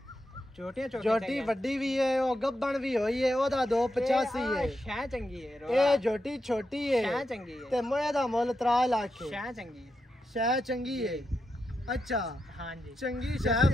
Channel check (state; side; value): normal; both; correlation 0.86